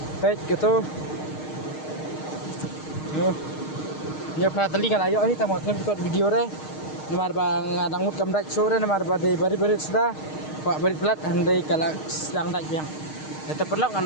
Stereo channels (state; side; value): late; right; 6.5 ms